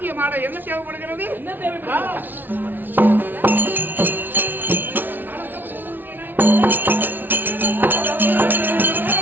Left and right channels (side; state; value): left; late; 0.090 ms